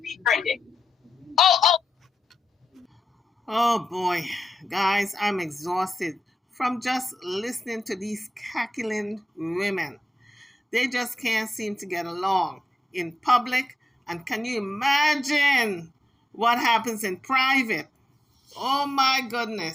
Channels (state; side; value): normal; both; correlation 0.91